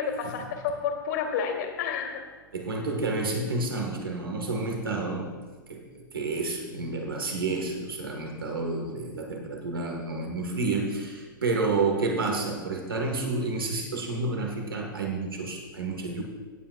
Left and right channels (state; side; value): noise; right; hum, 29 dB below the sound